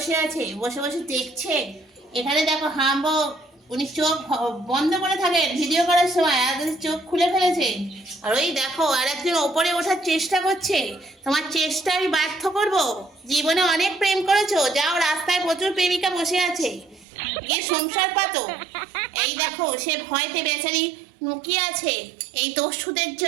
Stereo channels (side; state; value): left; drops out; at 17.1 s